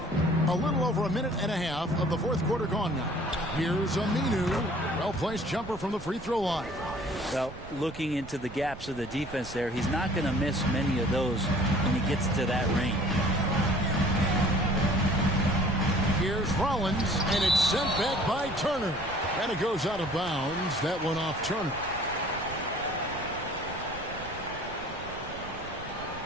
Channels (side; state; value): right; noise; rumble, 14 dB below the sound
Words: A little over a minute and a half of the fourth quarter gone now. Here's Aminu. Well-placed jumper from the free throw line. Well, looking into the gaps of the defense there, he's not going to miss many of those when he gets to that range. Here's Rollins, and it's sent back by Turner. And it goes out of bounds. That one off Turner.